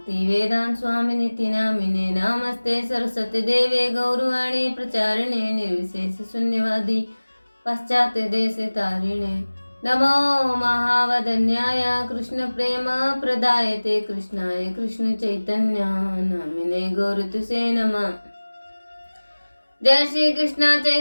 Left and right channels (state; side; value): inverted; both; correlation -1.00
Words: वेदांत स्वामिनिति नामिने। नमस्ते सरस्वती देवे गौरवाणी प्रचारिणे निर्विशेष शून्यवादी पाश्चात्य देश तारिणे। नमो महावदन्याय कृष्ण प्रेम प्रदायते कृष्णाय कृष्ण चैतन्य नामिने गौरतुसे नमः। जय श्री कृष्ण